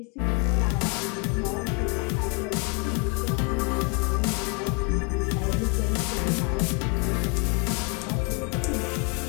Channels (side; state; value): right; quieter; 34.1 dB